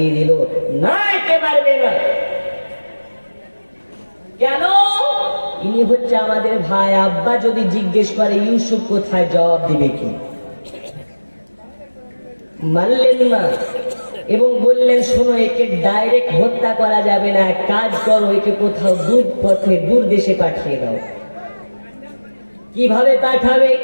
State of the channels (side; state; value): both; inverted; correlation -1.00